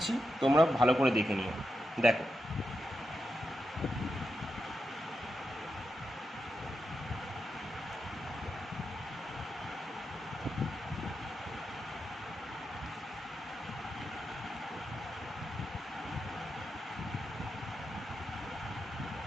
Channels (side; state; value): both; normal; correlation 0.87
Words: তোমরা ভালো করে দেখে নিও। দেখো,